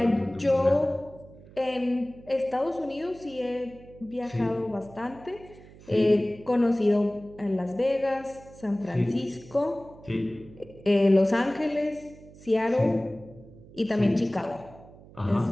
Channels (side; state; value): right; noise; hum, 21 dB below the sound